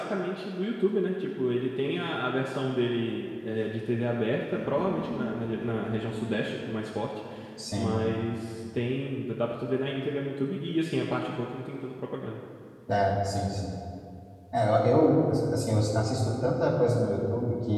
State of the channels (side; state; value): both; identical; correlation 1.00